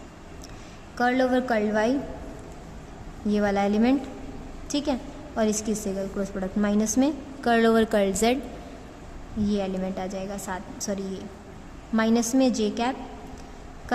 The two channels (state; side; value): identical; both; correlation 1.00